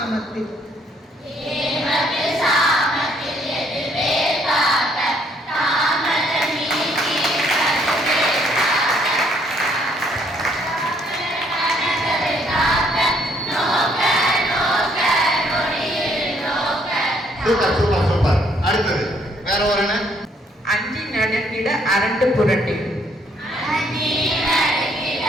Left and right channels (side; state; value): both; normal; correlation 0.67